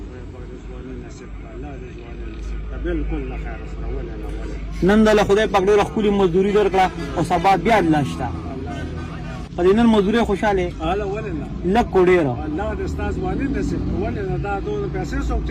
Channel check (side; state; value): both; identical; correlation 1.00